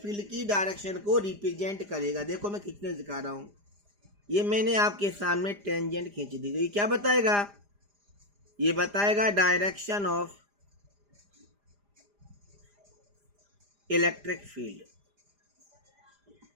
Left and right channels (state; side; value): late; left; 4.9 ms